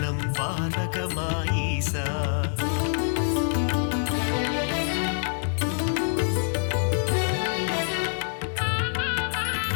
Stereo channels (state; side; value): silent; right; digital silence